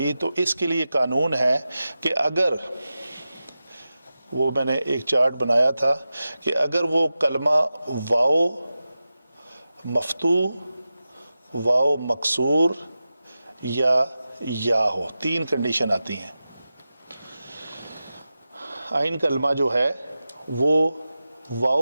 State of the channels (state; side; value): inverted; both; correlation -0.93